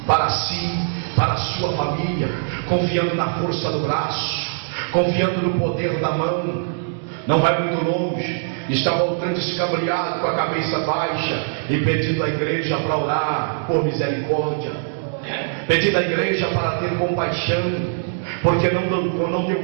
para si, para a sua família, confiando na força do braço, confiando no poder da mão. Não vai muito longe, está voltando escabreado com a cabeça baixa e pedindo à igreja para orar por misericórdia, pedindo à igreja para ter compaixão, porque não deu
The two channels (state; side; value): silent; left; digital silence